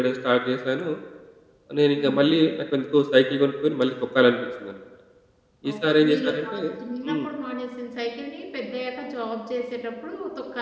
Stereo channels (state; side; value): identical; both; correlation 1.00